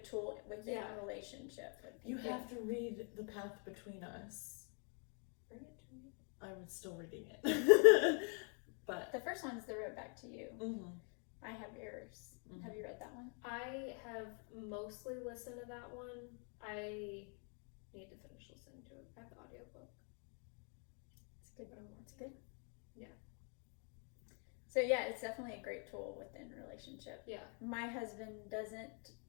tool within a relationship. You have to read The Path Between Us. Bring it to me. I was still reading it. But the first one's The Road Back to You. Mm-hmm. I have yours. Mm-hmm. Have you read that one? I have mostly listened to that one. I need to finish listening to it. I have the audiobook. It's good. It's good. Yeah. So yeah, it's definitely a great tool within a relationship. Yeah. My husband doesn't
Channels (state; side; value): quieter; right; 39.8 dB